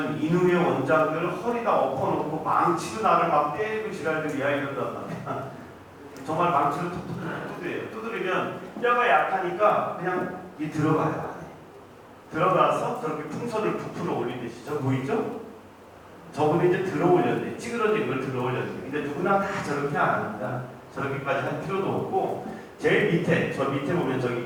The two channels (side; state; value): both; identical; correlation 1.00